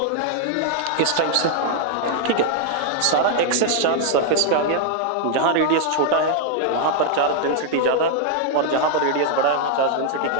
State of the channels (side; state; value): both; different; correlation 0.00